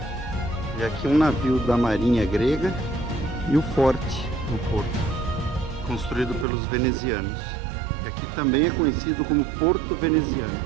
E aqui um navio da marinha grega e o forte no porto, construído pelos venezianos. E aqui também é conhecido como Porto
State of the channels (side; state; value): left; drops out; at 6.5 s